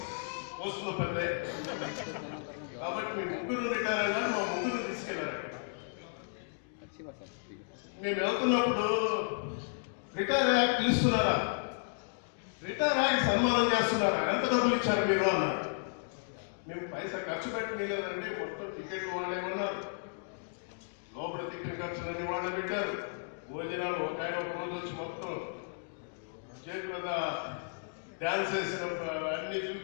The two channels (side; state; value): right; silent; digital silence